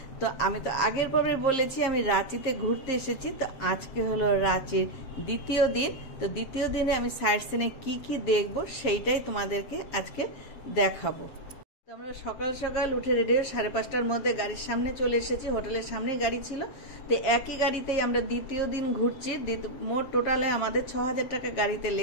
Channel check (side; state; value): right; late; 7.3 ms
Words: তো আমি তো আগের পর্বে বলেছি আমি রাঁচিতে ঘুরতে এসেছি। তো আজকে হলো রাঁচির দ্বিতীয় দিন। তো দ্বিতীয় দিনে আমি সাইট সিনে কি কি দেখবো সেইটাই তোমাদেরকে আজকে দেখাবো। আমরা সকাল সকাল উঠে রেডি হয়ে 5:30টার মধ্যে গাড়ির সামনে চলে এসেছি। হোটেলের সামনেই গাড়ি ছিল। তো একই গাড়িতেই আমরা দ্বিতীয় দিন ঘুরছি। মোট টোটালে আমাদের 6000 টাকা গাড়িতে